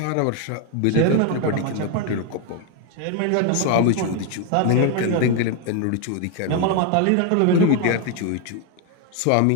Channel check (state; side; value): different; both; correlation 0.01